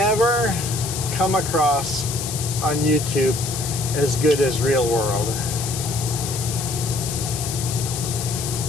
come across on YouTube as good as real world.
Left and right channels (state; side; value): noise; left; hiss, 6 dB below the sound